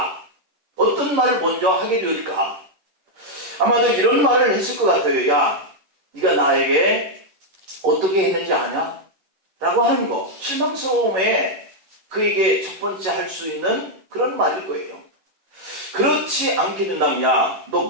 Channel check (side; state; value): left; late; 11 ms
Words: 어떤 말을 먼저 하게 될까? 아마도 이런 말을 했을 것 같아요. 야, 네가 나에게 어떻게 했는지 아냐? 라고 하는 거, 실망스러움에 그에게 첫 번째 할 수 있는 그런 말일 거예요. 그렇지 않게 된다면, 야, 너